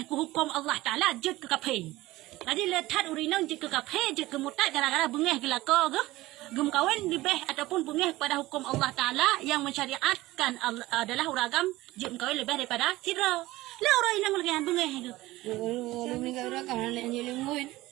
ke hukum Allah Ta'ala jut ke kaphen. Jadi letat urinang jut ke kaphen, jut ke mutat gara-gara bengeh ke lako ke. Gem kawin lebih ataupun bengeh pada hukum Allah Ta'ala yang mensyariatkan adalah uragam jim kawin lebih daripada sirau. Lah orang inang lagi yang bengeh itu. Oh, lebih ke uragam nak anjilin kuit.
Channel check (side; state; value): left; quieter; 18.1 dB